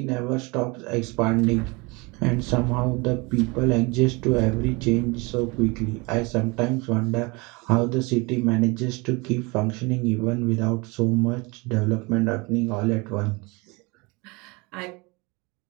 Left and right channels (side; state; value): left; quieter; 26.7 dB